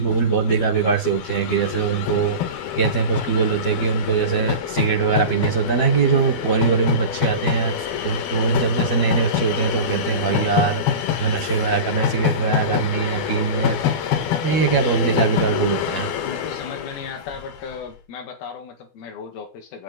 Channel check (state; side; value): late; right; 12 ms